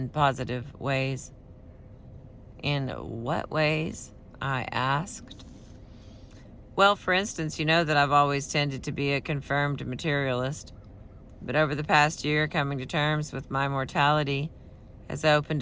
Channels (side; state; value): both; identical; correlation 1.00